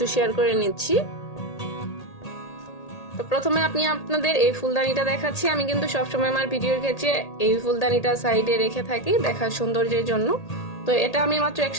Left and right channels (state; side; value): late; right; 1.8 ms